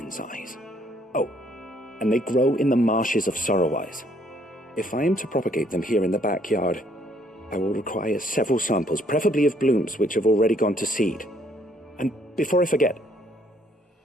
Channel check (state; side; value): normal; both; correlation 0.66